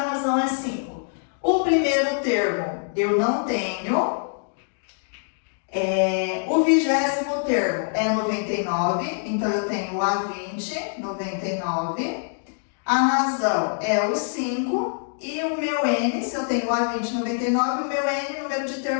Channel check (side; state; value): right; silent; digital silence